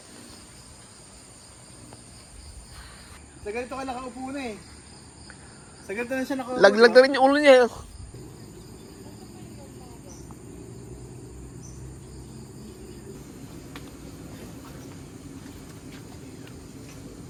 Sa ganito ka nakaupo na eh. Sa ganito na siya nakaupo. Laglag na rin yung ulo niya.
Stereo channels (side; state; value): both; identical; correlation 1.00